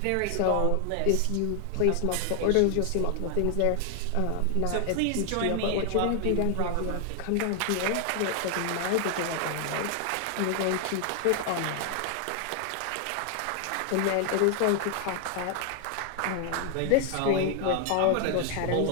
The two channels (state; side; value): different; both; correlation 0.00